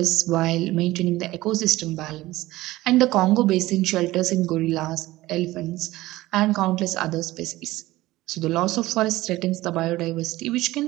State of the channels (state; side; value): quieter; left; 17.6 dB